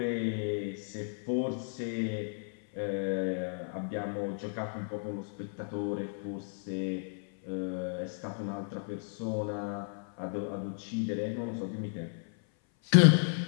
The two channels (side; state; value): right; silent; 56 dB below the other